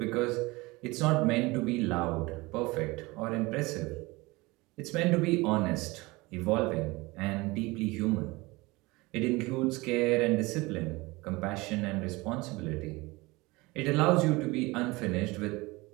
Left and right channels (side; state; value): left; quieter; 22.9 dB